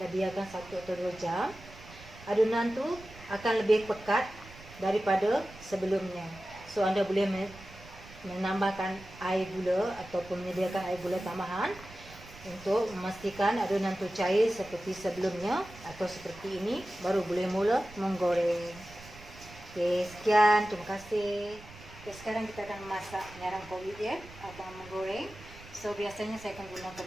biarkan 1 atau 2 jam, adunan tu akan lebih pekat daripada sebelumnya. So anda boleh menambahkan air gula ataupun menyediakan air gula tambahan untuk memastikan adunan tu cair seperti sebelumnya atau seperti ini, baru boleh mula menggoreng. Okey, sekian, terima kasih. Okey, sekarang kita akan memasak penyarang kulit ya, atau menggoreng. So biasanya saya akan gunakan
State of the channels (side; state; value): right; noise; rumble, 19 dB below the sound